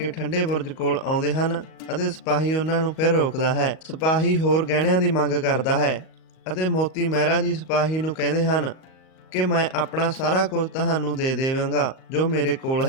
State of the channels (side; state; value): right; late; 38 ms